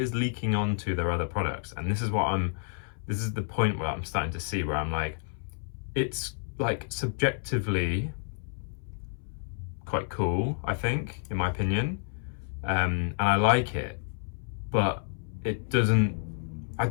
is leaking onto their other products. And this is the point where I'm starting to see, where I'm like, it's like subjectively quite cool, I think, in my opinion, and I like it, but it doesn't. I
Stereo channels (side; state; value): right; silent; 58 dB below the other